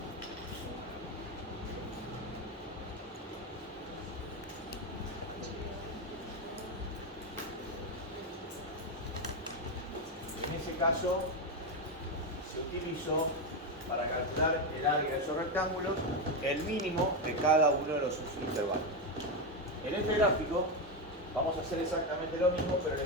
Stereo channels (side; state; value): both; normal; correlation 0.10